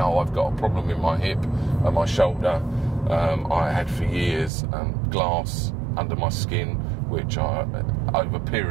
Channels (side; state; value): left; drops out; at 4.5 s